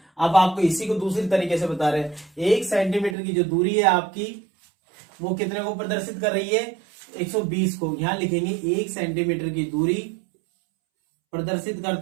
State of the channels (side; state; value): left; drops out; at 3.2 s